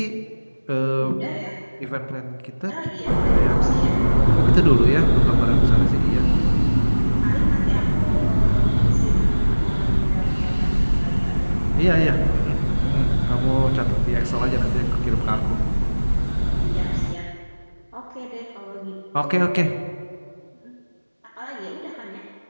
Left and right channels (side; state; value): both; inverted; correlation -1.00